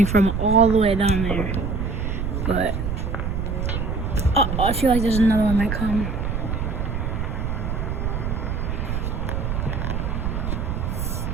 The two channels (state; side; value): noise; right; rumble, 2 dB below the sound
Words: from all the way down there. But I feel like there's another one might come.